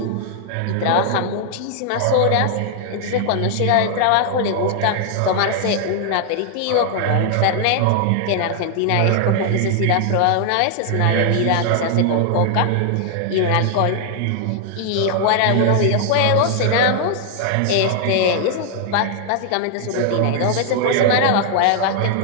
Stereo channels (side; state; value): both; different; correlation 0.00